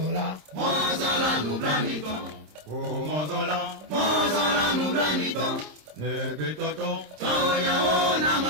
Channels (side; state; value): left; late; 26 ms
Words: Mozola nublanito, oh mozola nublanito, nebetoto, toya o